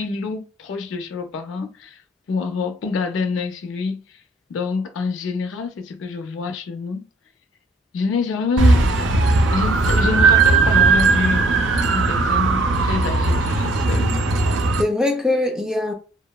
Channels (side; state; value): both; normal; correlation 0.62